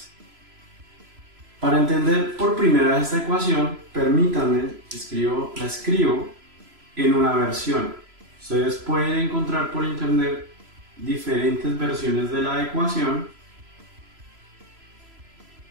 Para entender por primera vez esta ecuación, permítanme, la escribo en una versión. Ustedes pueden encontrar por internet diferentes versiones de la ecuación,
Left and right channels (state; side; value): late; left; 3.0 ms